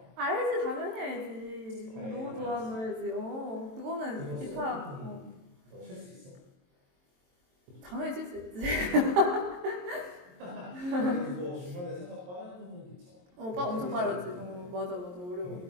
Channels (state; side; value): late; left; 22 ms